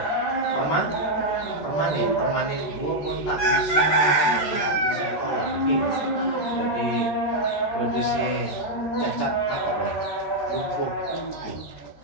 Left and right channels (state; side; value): late; right; 13 ms